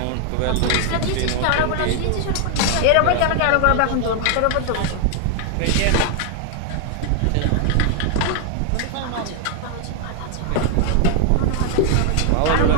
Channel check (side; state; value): both; different; correlation 0.00